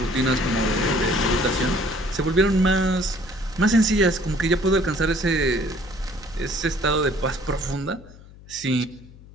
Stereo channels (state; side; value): noise; left; hum, 21 dB below the sound